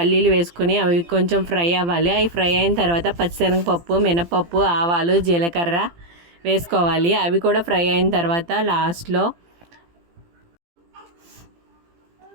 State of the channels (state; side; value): late; left; 18 ms